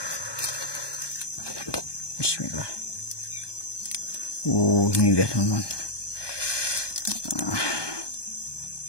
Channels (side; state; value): right; late; 1.2 ms